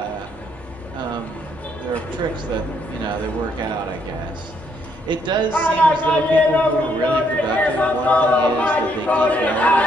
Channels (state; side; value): normal; both; correlation 0.71